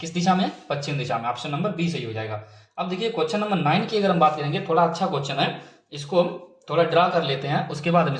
दिशा में, पश्चिम दिशा में। ऑप्शन नंबर बी सही हो जाएगा। अब देखिए क्वेश्चन नंबर 9 की अगर हम बात करेंगे, थोड़ा अच्छा क्वेश्चन है, इसको हम थोड़ा ड्रा कर लेते हैं, उसके बाद हम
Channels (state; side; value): identical; both; correlation 1.00